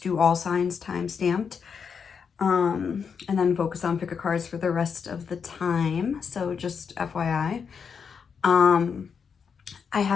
do all signs time stamped. And then focus on pick a cards for the rest of the time. So just FYI. I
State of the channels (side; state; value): right; quieter; 6.3 dB